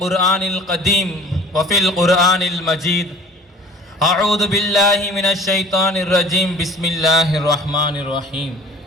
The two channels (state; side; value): normal; both; correlation 0.45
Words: القديم وفي القرآن المجيد أعوذ بالله من الشيطان الرجيم بسم الله الرحمن الرحيم